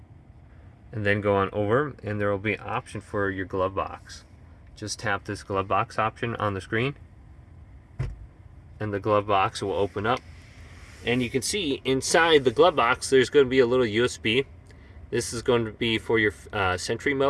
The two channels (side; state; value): both; identical; correlation 1.00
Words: And then go on over and there will be an option for your glove box. Just tap this glove box option on the screen and the glove box will open up. And you can see inside the glove box there's going to be a little USB. This is going to be for your Sentry